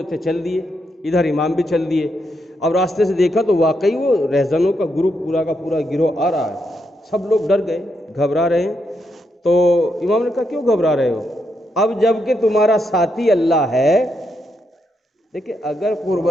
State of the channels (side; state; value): both; normal; correlation 0.80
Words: تھے چل دیے، ادھر امام بھی چل دیے۔ اب راستے سے دیکھا تو واقعی وہ رہزنوں کا گروپ پورا کا پورا گروہ آ رہا ہے۔ سب لوگ ڈر گئے، گھبرا رہے ہیں۔ تو امام نے کہا کیوں گھبرا رہے ہو؟ اب جب کہ تمہارا ساتھی اللہ ہے، دیکھیں اگر